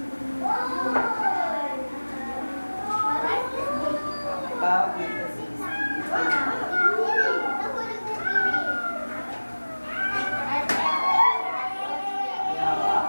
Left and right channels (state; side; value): inverted; both; correlation -1.00